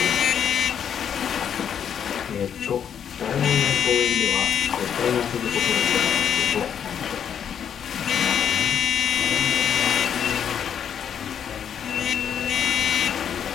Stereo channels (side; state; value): right; quieter; 8.4 dB